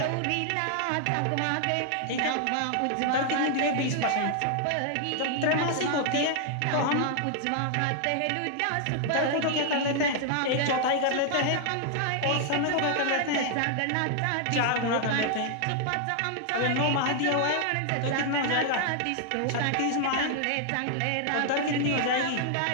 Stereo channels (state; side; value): different; both; correlation 0.00